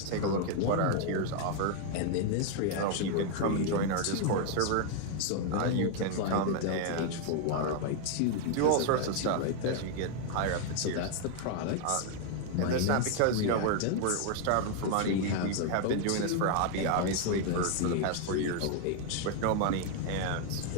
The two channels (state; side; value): different; both; correlation 0.00